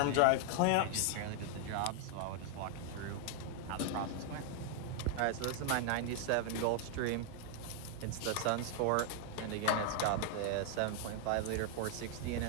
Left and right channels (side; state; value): both; different; correlation 0.00